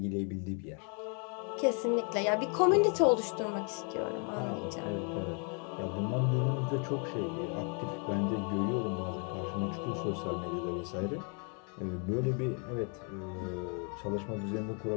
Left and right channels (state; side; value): quieter; right; 38.9 dB